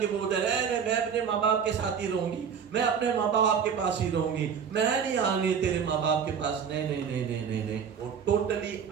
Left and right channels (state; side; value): quieter; left; 7.2 dB